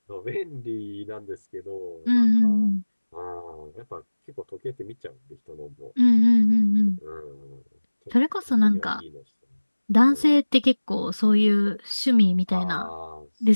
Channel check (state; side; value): inverted; both; correlation -1.00